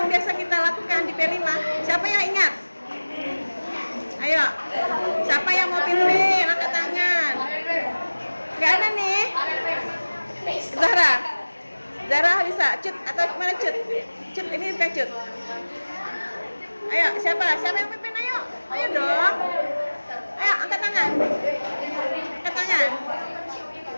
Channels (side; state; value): both; inverted; correlation -1.00